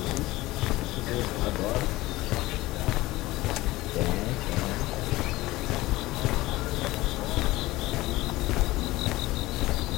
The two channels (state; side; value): quieter; right; 18.7 dB